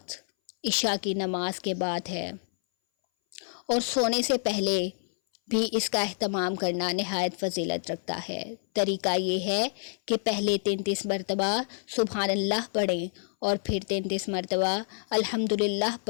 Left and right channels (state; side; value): silent; right; 59 dB below the other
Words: عشاء کی نماز کے بعد ہے، اور سونے سے پہلے بھی اس کا اہتمام کرنا نہایت فضیلت رکھتا ہے۔ طریقہ یہ ہے کہ پہلے 33 مرتبہ سبحان اللہ پڑھیں اور پھر 33 مرتبہ الحمدللہ